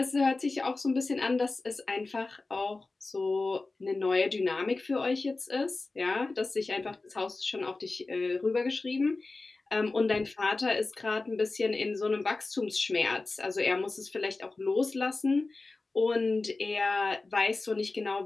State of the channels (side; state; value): right; quieter; 3.5 dB